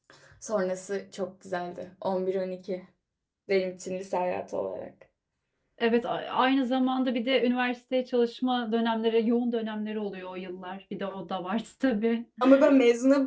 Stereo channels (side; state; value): both; identical; correlation 1.00